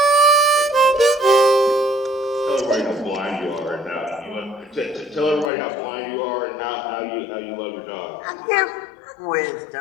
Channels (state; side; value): drops out; right; at 5.5 s